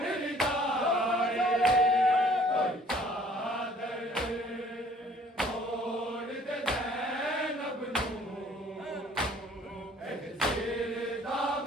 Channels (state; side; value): normal; both; correlation 0.56